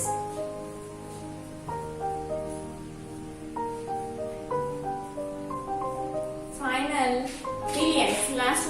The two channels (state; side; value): identical; both; correlation 1.00